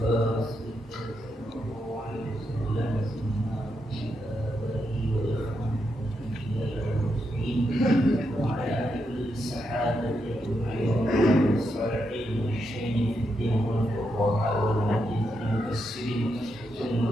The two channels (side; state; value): both; normal; correlation 0.82